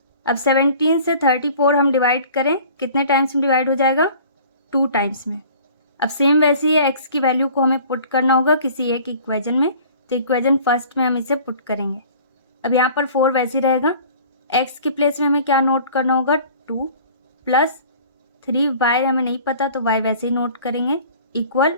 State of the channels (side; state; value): both; inverted; correlation -0.48